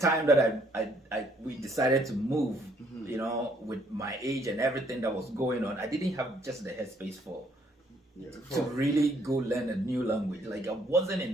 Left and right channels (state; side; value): normal; both; correlation 0.66